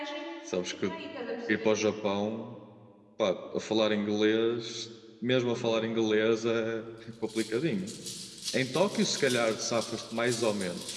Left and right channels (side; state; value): both; identical; correlation 1.00